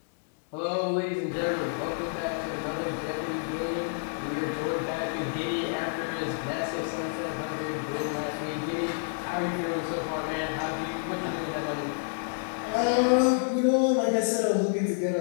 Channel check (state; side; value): silent; right; digital silence